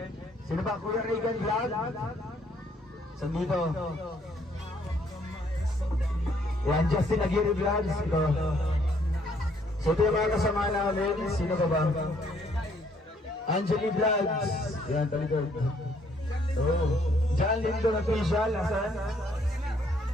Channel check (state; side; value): normal; both; correlation 0.67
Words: sino ba? Kuya Regan Vlog, saan dito? Yan, Justin Aguirre Vlogs, ito. So ito yung mga kasama namin, sino ka ba? Angeli Vlogs, yan, talikod. John Lindo Official, asan?